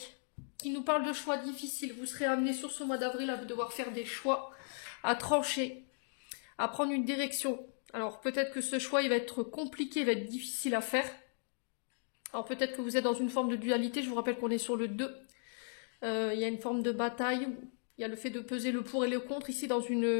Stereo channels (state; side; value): silent; right; digital silence